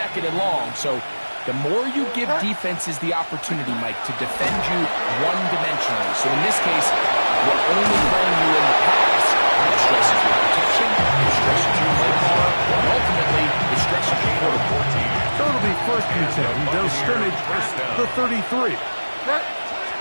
and long. So the more you give defenses the opportunity, Mike, to defend you one-dimensionally. So in this case, we're only playing you in the pass. It stresses your protection, it stresses your play caller, and ultimately, it stresses your quarterback. So it'll be first and 10. They'll scrimmage the 33.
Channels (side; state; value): both; inverted; correlation -1.00